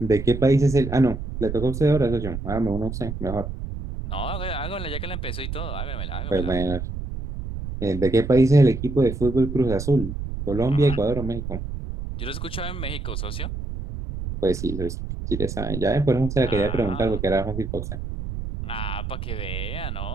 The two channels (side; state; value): right; noise; rumble, 6 dB below the sound